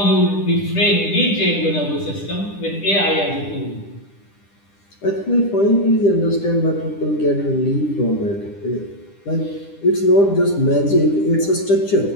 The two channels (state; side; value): late; right; 10 ms